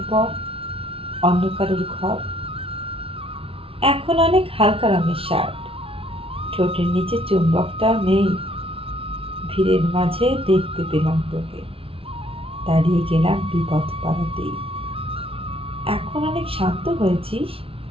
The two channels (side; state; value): left; late; 0.26 ms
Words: বর, অন্য কারোর ঘর। এখন অনেক হালকা রঙের শার্ট, ঠোঁটের নিচে চুম্বকটাও নেই। ভিড়ের মাঝে দেখতে পেলাম তোকে, দাঁড়িয়ে গেলাম বিপদ পাড়াতেই। এখন অনেক শান্ত হয়েছিস,